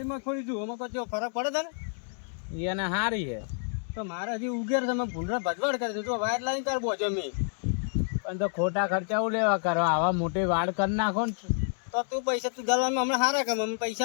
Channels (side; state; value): right; silent; 59 dB below the other